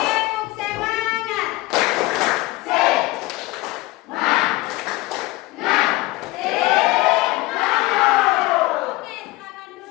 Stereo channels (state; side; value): quieter; right; 19.8 dB